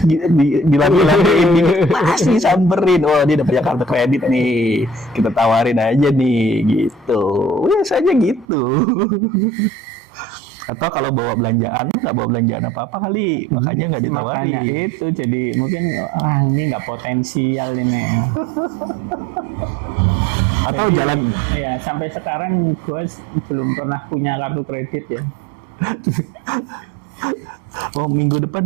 dilambi-lambiin, pasti samperin. Oh, dia udah punya kartu kredit nih, kita tawarin aja nih gitu. Biasanya gitu. Atau kalau bawa belanjaan, nggak bawa belanjaan apa-apa kali, makanya nggak ditawarin. Makanya itu, jadi mungkin ini nggak potensial ini. Atau Jadi, jalan. ya sampai sekarang gue belum pernah punya kartu kredit ya. Oh, minggu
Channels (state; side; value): drops out; left; at 8.5 s